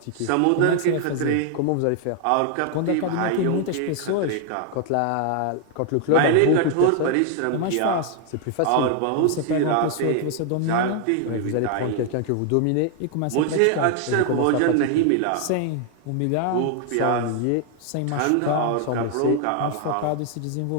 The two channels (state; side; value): different; both; correlation 0.00